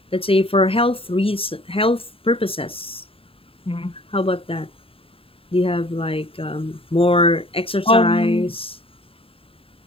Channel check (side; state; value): right; late; 0.27 ms